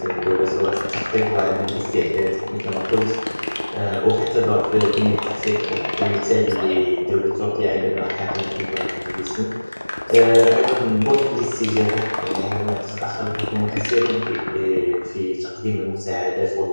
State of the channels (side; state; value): both; inverted; correlation -1.00